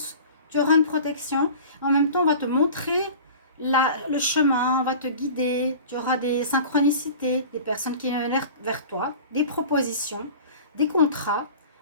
tu auras une protection, en même temps, on va te montrer le chemin, on va te guider, tu auras des synchronicités, des personnes qui viennent vers toi, des propositions, des contrats,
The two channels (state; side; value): inverted; both; correlation -0.40